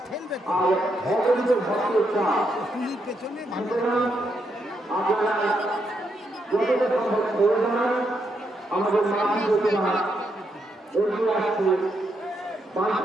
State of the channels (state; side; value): normal; both; correlation 0.79